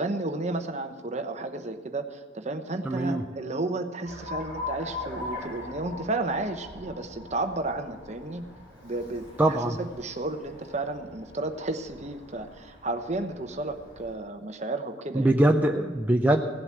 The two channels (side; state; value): both; normal; correlation 0.58